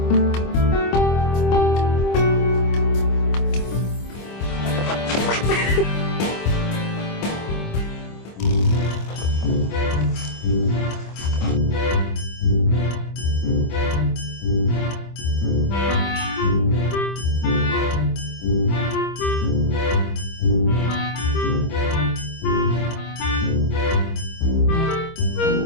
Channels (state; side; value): late; right; 25 ms